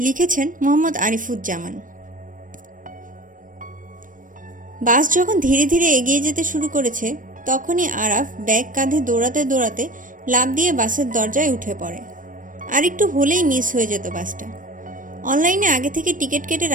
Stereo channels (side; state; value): left; late; 0.38 ms